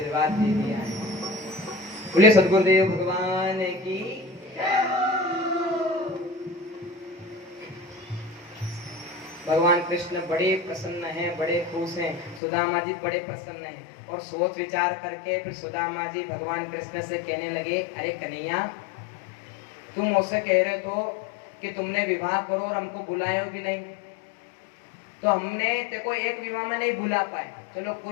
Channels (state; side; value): drops out; right; at 12.4 s